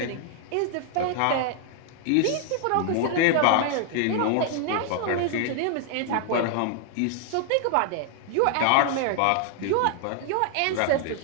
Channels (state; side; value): different; both; correlation 0.00